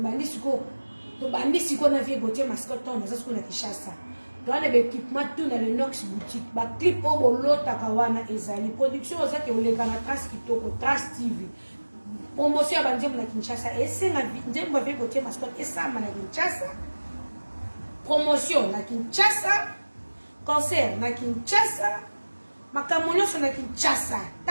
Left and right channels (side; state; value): both; inverted; correlation -1.00